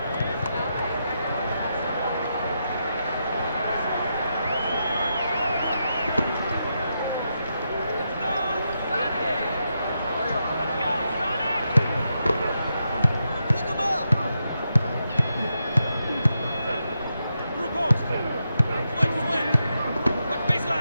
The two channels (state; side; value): inverted; both; correlation -0.84